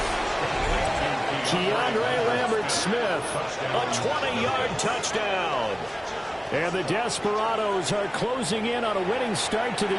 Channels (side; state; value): both; identical; correlation 1.00